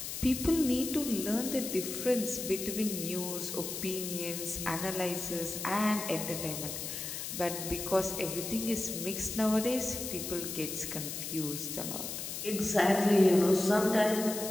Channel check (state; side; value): noise; left; hiss, 6 dB below the sound